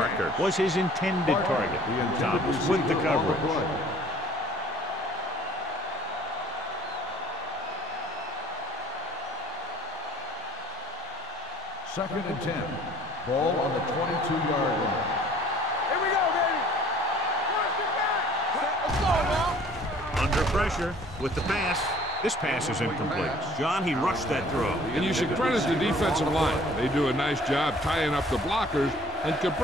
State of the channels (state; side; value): normal; both; correlation 0.54